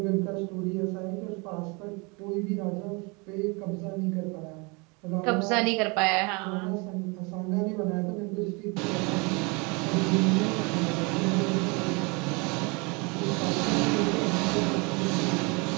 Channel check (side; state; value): left; quieter; 29.3 dB